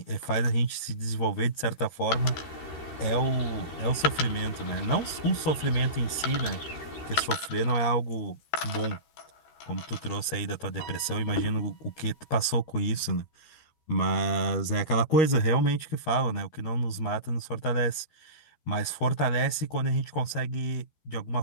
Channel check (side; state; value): right; late; 13 ms